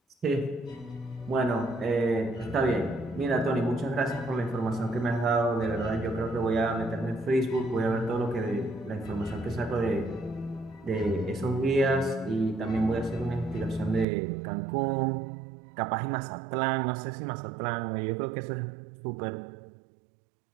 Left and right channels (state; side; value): drops out; left; at 14.1 s